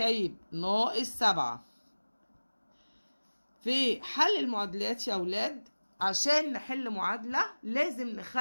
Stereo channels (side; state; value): both; inverted; correlation -1.00